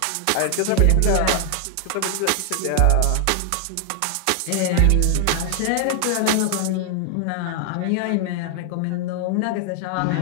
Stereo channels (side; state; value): both; different; correlation 0.00